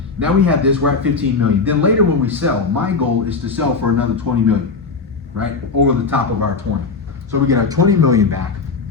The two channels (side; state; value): right; quieter; 4.5 dB